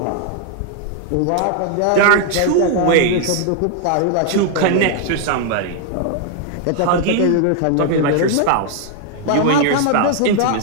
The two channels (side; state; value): both; different; correlation 0.00